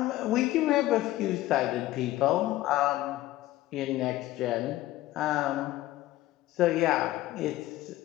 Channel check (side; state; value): right; quieter; 16.0 dB